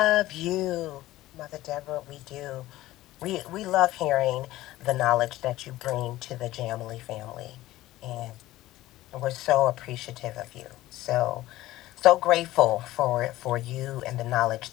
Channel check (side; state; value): right; quieter; 16.3 dB